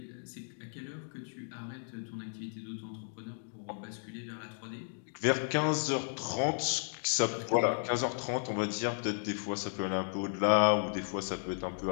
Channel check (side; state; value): right; silent; digital silence